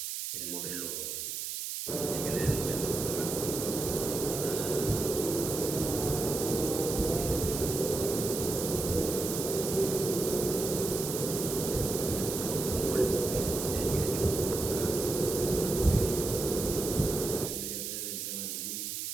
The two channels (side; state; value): right; noise; hiss, 4 dB below the sound